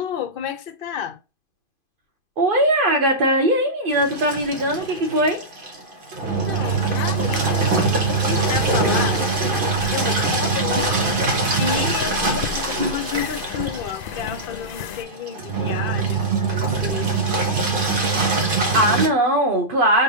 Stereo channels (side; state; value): left; late; 2.5 ms